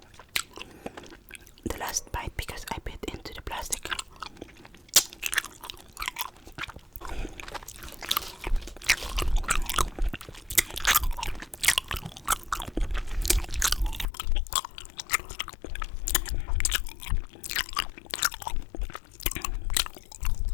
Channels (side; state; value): right; drops out; at 14.1 s